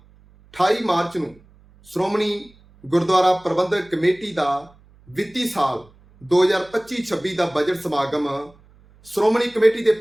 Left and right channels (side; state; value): right; noise; hum, 28 dB below the sound